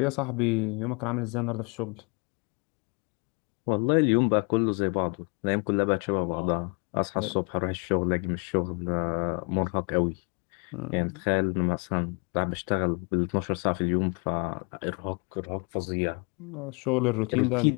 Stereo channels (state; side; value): quieter; right; 34.1 dB